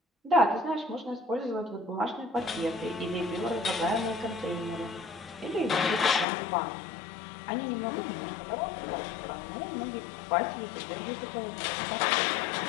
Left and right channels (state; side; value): drops out; right; at 6.2 s